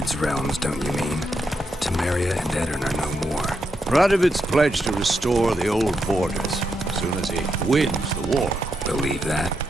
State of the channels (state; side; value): normal; both; correlation 0.82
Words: realms, don't you mean? Temeria and Edirn are no more. Radovid's pledged to restore the old borders as soon as he wins the war. Believe that?